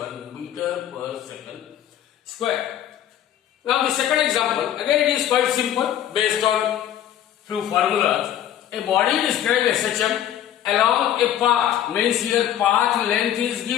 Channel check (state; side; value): quieter; right; 11.1 dB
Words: meter per second square. Now the second example, again it is quite simple based on few formulas. A body described as such along a path, means here path length is